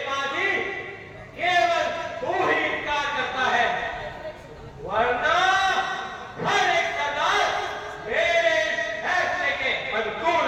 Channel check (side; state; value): both; identical; correlation 1.00